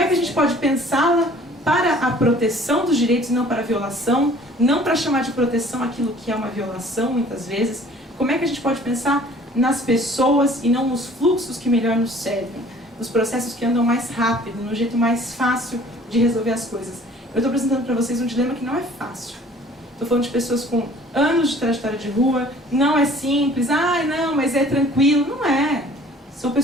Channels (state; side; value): normal; both; correlation 0.52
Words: que a gente pode pensá-la para a proteção dos direitos e não para a violação, não para chamar de proteção aquilo que é uma violação, muitas vezes? Como é que a gente pode pensar nas pessoas e não nos fluxos que melhor nos servem, nos processos que andam mais rápido, no jeito mais fácil de resolver as coisas? Eu estou apresentando para vocês um dilema que não é fácil. Estou falando de pessoas com anos de trajetória de rua, não é simples, não, mas é tranquilo. Não é. São